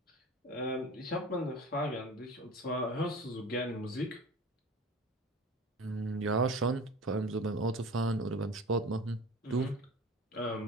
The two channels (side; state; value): both; normal; correlation 0.37